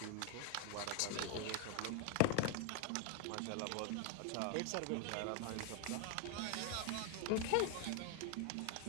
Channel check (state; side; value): different; both; correlation 0.01